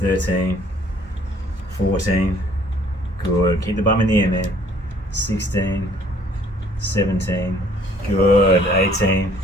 14, good. Keep the bum in the air, man. 16, 17, good. 18,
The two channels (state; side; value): normal; both; correlation 0.59